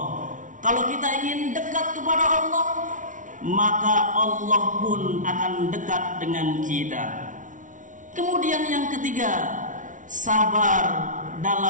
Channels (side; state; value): left; late; 0.37 ms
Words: Kalau kita ingin dekat kepada Allah, maka Allah pun akan dekat dengan kita. Kemudian yang ketiga, sabar